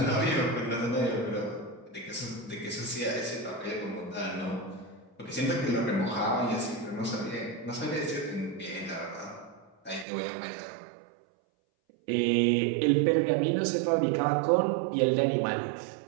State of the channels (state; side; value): drops out; left; at 10.1 s